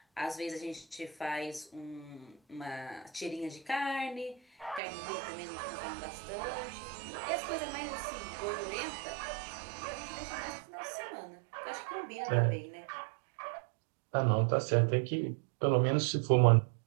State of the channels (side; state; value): left; drops out; at 4.8 s